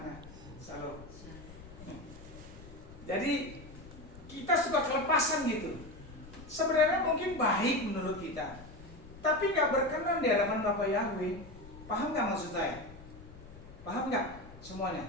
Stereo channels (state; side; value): noise; left; rumble, 17 dB below the sound